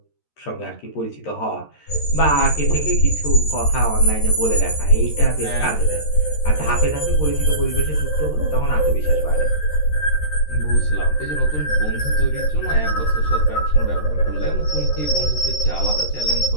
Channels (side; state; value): right; late; 13 ms